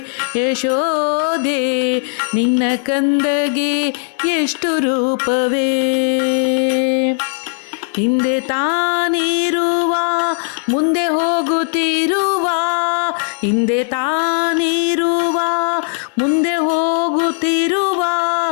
ಯಶೋದೆ ನಿನ್ನ ಕಂದಗೆ ಎಷ್ಟು ರೂಪವೇ. ಹಿಂದೆ ತಾನಿರುವ ಮುಂದೆ ಹೋಗುತ್ತಿರುವ, ಹಿಂದೆ ತಾನಿರುವ ಮುಂದೆ ಹೋಗುತ್ತಿರುವ,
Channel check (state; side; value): silent; right; digital silence